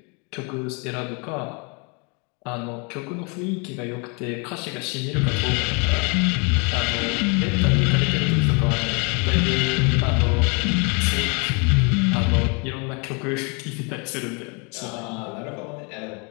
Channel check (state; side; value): quieter; right; 33.0 dB